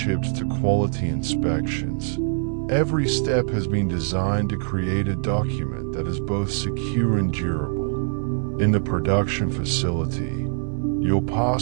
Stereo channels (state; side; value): silent; left; digital silence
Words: to quality inspections, every step has been designed to create a document that is both secure and durable. In the production facility, your